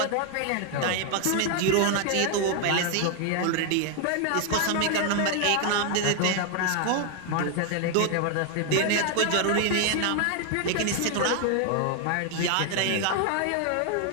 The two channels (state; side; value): different; both; correlation 0.00